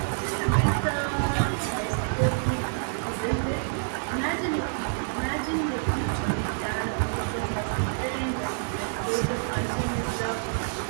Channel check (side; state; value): left; silent; digital silence